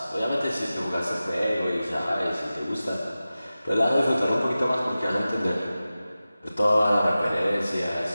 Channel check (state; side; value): inverted; both; correlation -0.95